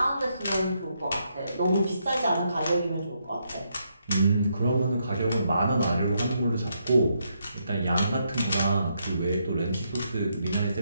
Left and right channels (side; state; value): both; inverted; correlation -0.78